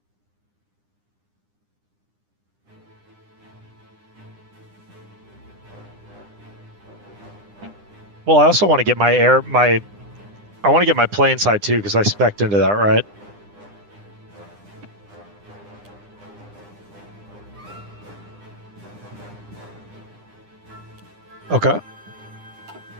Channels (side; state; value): left; late; 9.9 ms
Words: Well, I also want to get I want to get my plane side too because I spec'd into that, right? Okay.